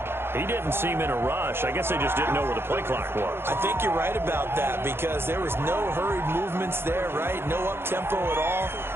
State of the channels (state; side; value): late; left; 0.11 ms